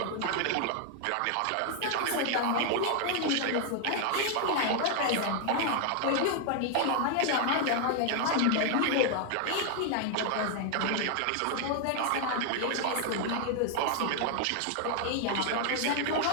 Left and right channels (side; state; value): both; different; correlation 0.00